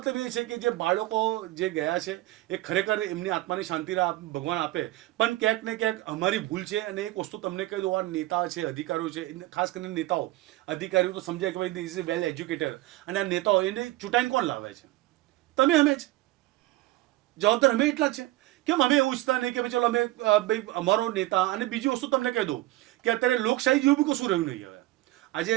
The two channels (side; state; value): left; quieter; 17.6 dB